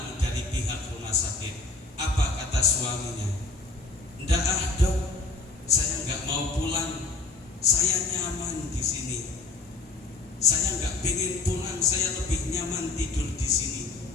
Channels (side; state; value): right; quieter; 3.6 dB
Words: dari pihak rumah sakit. suaminya, "Ndak ah dok, saya nggak mau pulang, saya nyaman di sini. Saya nggak pengen pulang, saya lebih nyaman tidur di sini."